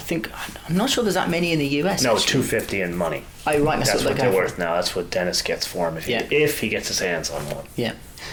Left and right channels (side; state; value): both; identical; correlation 1.00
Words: I'm not sure there's that many in the US. No, actually. 250 in money. Oh, right. That's what they're worth now. That's what Dennis gets for him if he gets his hands on one. Yeah.